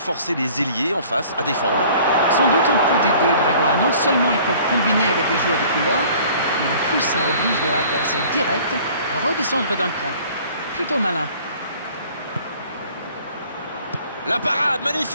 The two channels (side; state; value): both; inverted; correlation -0.51